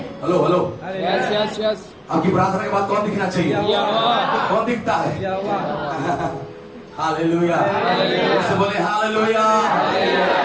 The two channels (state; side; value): identical; both; correlation 1.00